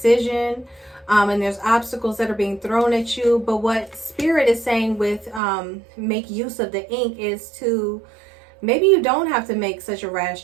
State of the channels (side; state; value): left; drops out; at 5.4 s